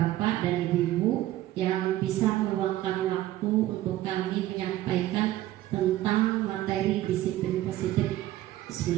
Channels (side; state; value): left; quieter; 14.8 dB